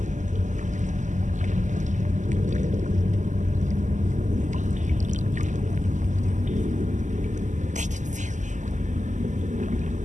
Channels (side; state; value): left; late; 0.35 ms